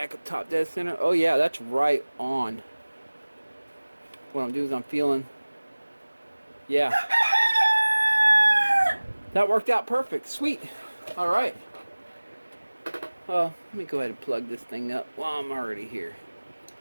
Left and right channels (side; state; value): both; inverted; correlation -1.00